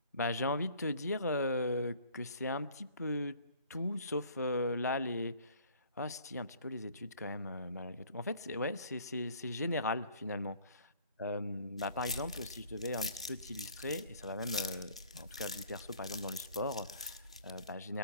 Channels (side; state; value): both; inverted; correlation -0.55